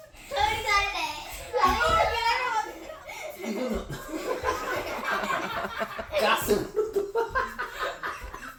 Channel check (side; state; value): both; identical; correlation 1.00